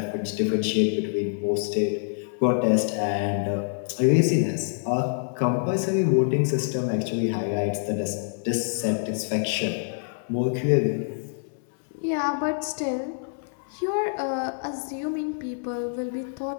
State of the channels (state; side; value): silent; right; 61 dB below the other